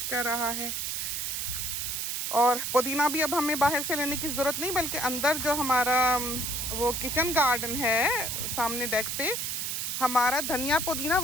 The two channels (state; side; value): noise; right; hiss, 2 dB below the sound